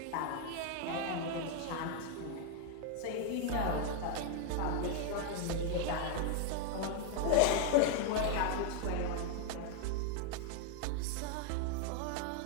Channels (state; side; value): different; both; correlation 0.00